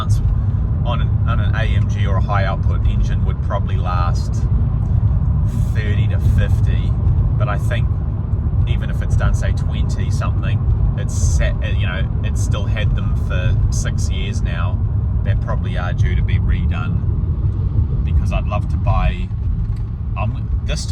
on an AMG or a high output engine would probably last 30 to 50, but I think even if it's done, say 20 something, it's still had them for 6 years now. They probably are due to be redone, because I'd love to buy, this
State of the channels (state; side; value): identical; both; correlation 1.00